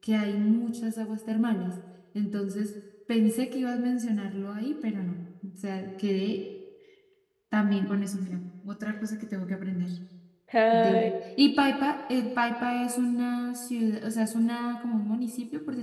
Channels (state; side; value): identical; both; correlation 1.00